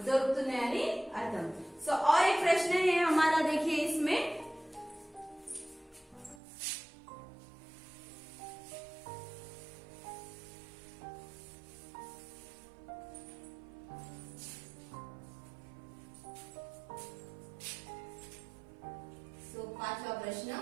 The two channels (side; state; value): left; drops out; at 6.4 s